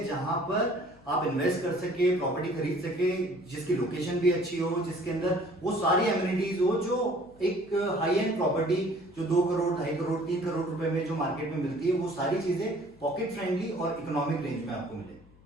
जहां पर आप इन्वेस्ट कर सके, प्रॉपर्टी खरीद सके, जिसकी लोकेशन भी अच्छी हो, जिसके अंदर वो सारी एमिनिटीज हो जो एक हाई एंड प्रॉपर्टी जो 2 करोड़, 2.5 करोड़, 3 करोड़ रुपए में जो मार्केट में मिलती है, वो सारी चीजें पॉकेट फ्रेंडली और इकोनॉमिक रेंज में आपको मिले।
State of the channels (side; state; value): left; noise; hum, 26 dB below the sound